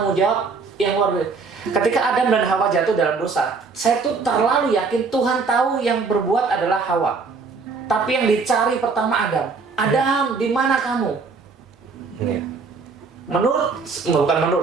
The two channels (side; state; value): left; quieter; 4.6 dB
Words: jawab yang luar biasa. Ketika Adam dan Hawa jatuh dalam dosa, saya tuh terlalu yakin Tuhan tahu yang berbuat adalah Hawa. Tapi yang dicari pertama Adam. Adam, di mana kamu? Bukan